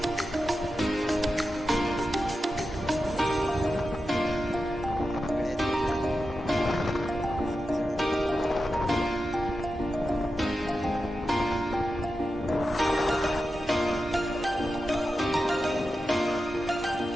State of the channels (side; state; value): both; normal; correlation 0.91